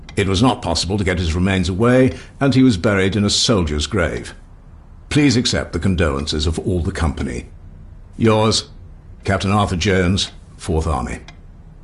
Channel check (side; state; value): both; identical; correlation 1.00